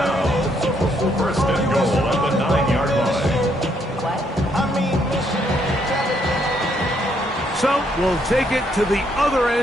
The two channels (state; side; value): normal; both; correlation 0.72